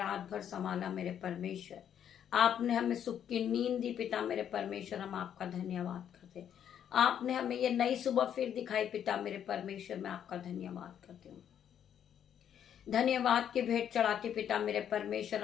भर संभाला मेरे परमेश्वर। आपने हमें सुख की नींद दी पिता मेरे परमेश्वर, हम आपका धन्यवाद करते। आपने हमें ये नई सुबह फिर दिखाई पिता मेरे परमेश्वर, मैं आपका धन्यवाद करती हूँ। धन्यवाद की भेंट चढ़ाती पिता मेरे परमेश्वर,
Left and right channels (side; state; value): right; quieter; 9.3 dB